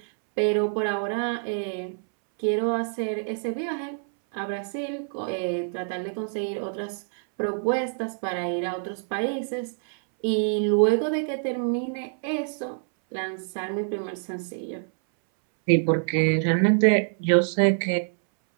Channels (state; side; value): silent; left; 61 dB below the other